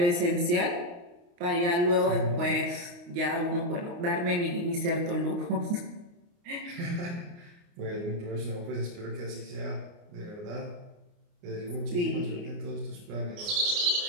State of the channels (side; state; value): left; late; 29 ms